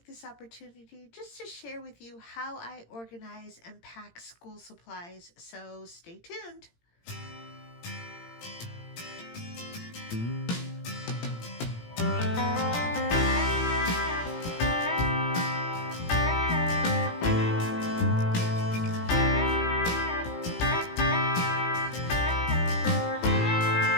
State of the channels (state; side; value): late; right; 17 ms